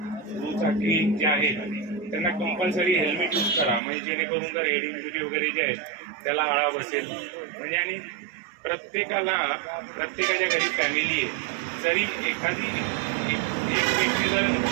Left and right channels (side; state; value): left; drops out; at 3.8 s